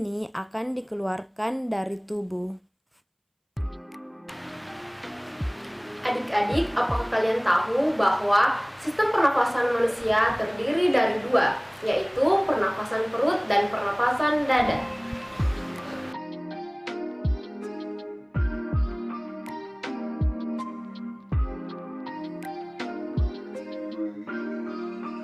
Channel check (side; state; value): both; identical; correlation 1.00